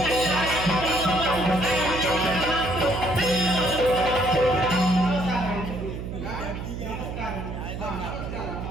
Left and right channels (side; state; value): right; noise; hum, 7 dB below the sound